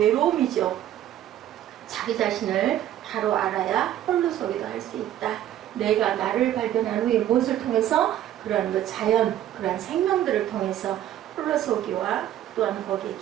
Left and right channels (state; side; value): quieter; left; 12.1 dB